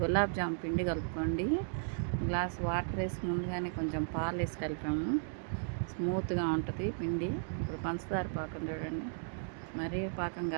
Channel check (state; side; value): silent; left; digital silence